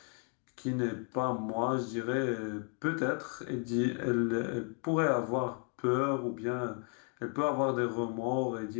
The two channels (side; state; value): right; quieter; 39.7 dB